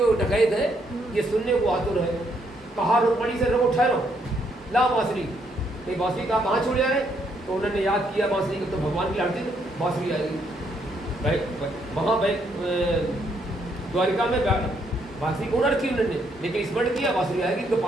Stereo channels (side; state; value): both; normal; correlation 0.73